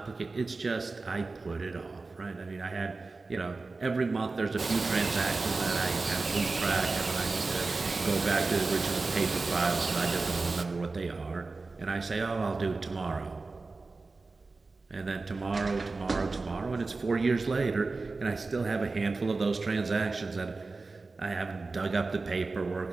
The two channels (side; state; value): left; quieter; 3.7 dB